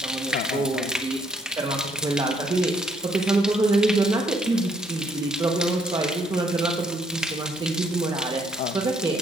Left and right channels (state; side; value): normal; both; correlation 0.68